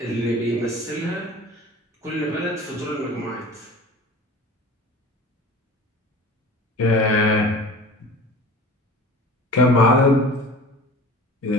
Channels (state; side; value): normal; both; correlation 0.40